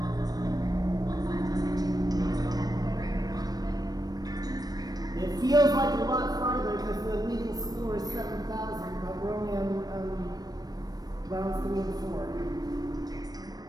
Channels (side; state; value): left; late; 0.19 ms